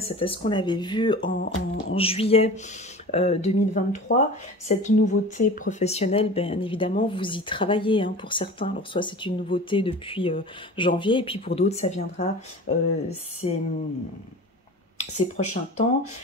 c'était ce qu'on avait vu en juillet 2023. Cette nouveauté professionnelle, bien évidemment, vous y travaillez pour certains. Alors soit c'est une nouveauté depuis janvier, et puis pour d'autres, ça viendra ces prochains temps.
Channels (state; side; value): normal; both; correlation 0.37